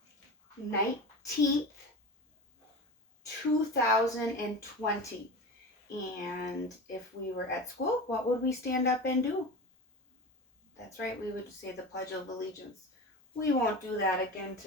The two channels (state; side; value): normal; both; correlation 0.29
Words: 19th, 2020. And if we were at school, what would we stand up and do? That's right, we would say the Pledge of Allegiance. We won't do that again.